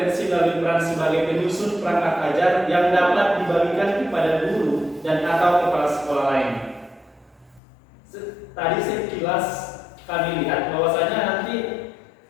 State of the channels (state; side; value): drops out; right; at 7.6 s